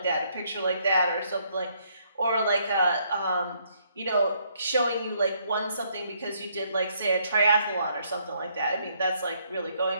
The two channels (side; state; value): both; inverted; correlation -0.70